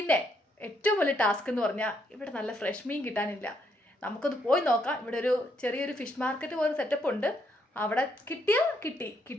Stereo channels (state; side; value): normal; both; correlation 0.74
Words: ഏറ്റവും വലിയ ടാസ്ക് എന്ന് പറഞ്ഞാൽ ഇവിടെ നല്ല ഫ്രഷ് മീൻ കിട്ടാനില്ല. നമുക്കൊന്ന് പോയി നോക്കാം. ഇവിടെ ഒരു ചെറിയൊരു ഫിഷ് മാർക്കറ്റ് പോലെ സെറ്റപ്പ് ഉണ്ട്. അവിടെ കിട്ടിയാൽ കിട്ടി,